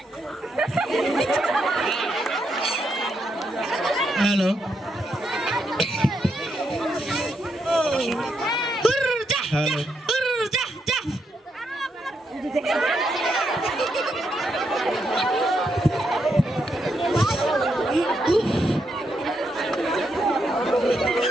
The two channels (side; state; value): both; normal; correlation 0.80